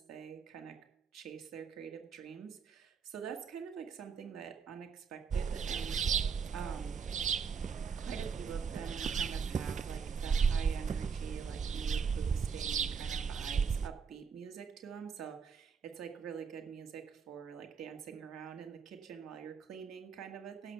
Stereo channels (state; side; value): quieter; left; 6.2 dB